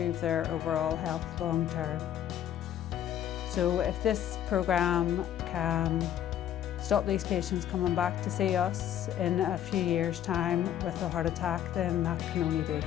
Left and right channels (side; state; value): right; quieter; 10.7 dB